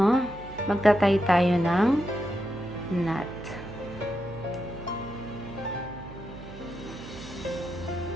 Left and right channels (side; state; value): right; noise; hum, 14 dB below the sound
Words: Magtatay tayo ng knot.